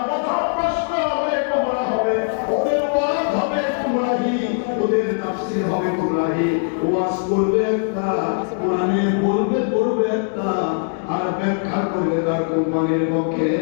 প্রথম প্রশ্ন হবে গোমরা হবে ওদের ওয়াজ হবে গুমরাহি ওদের তাফসীর হবে গুমরাহি ওয়াজ করবে একটা কোরআনে বলবে একটা আর ব্যাখ্যা করবে তার কোম্পানির পক্ষে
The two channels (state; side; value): silent; right; 65 dB below the other